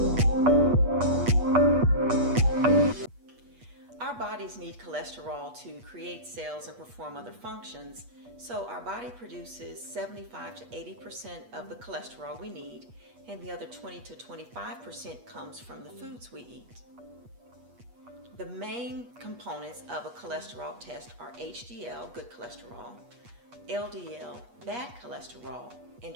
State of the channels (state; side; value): late; left; 8.3 ms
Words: Our bodies need cholesterol to create cells and perform other functions, so our body produces 75 to 80% of the cholesterol we need, and the other 20 to 25% comes from the foods we eat. The main components of a cholesterol test are HDL, good cholesterol, LDL, bad cholesterol, and